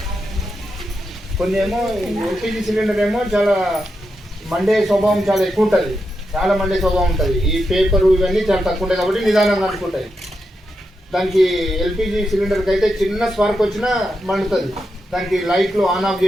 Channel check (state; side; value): normal; both; correlation 0.86